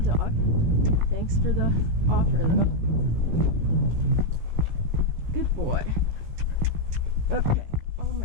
dog. Thanks for the offer though. Good boy. Okay. Oh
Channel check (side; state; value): left; late; 17 ms